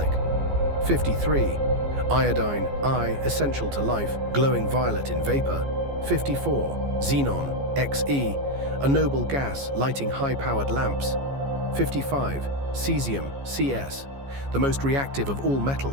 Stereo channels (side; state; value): left; late; 14 ms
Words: 53, iodine, I, essential to life, glowing violet in vapor. 54, xenon, Xe, a noble gas lighting high-powered lamps. 55, cesium, Cs, the most reactive of all